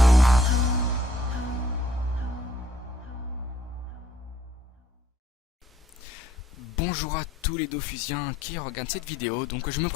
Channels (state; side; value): normal; both; correlation 0.64